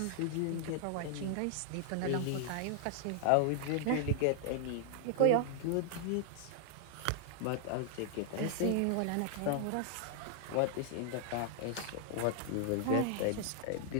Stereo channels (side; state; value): both; different; correlation 0.00